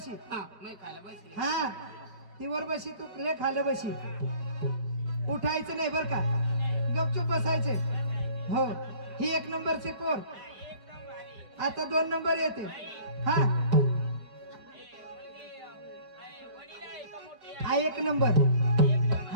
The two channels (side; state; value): left; late; 5.1 ms